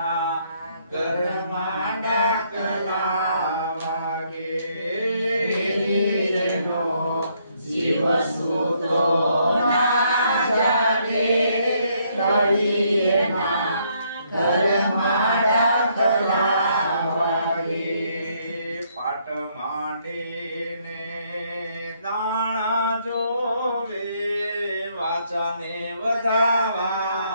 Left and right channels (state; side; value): inverted; both; correlation -0.71